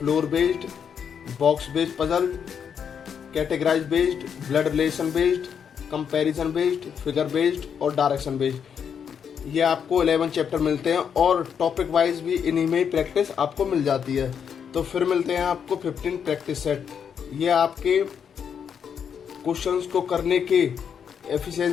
based, box based puzzle, categorise based, blood relation based, comparison based, figure based और डायरेक्शन बेस्ड। ये आपको 11 चैप्टर मिलते हैं और topic wise भी इन्हीं में ही practice आपको मिल जाती है। तो फिर मिलते हैं आपको 15 प्रैक्टिस सेट। ये आपके क्वेश्चंस को करने के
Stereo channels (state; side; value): quieter; right; 7.5 dB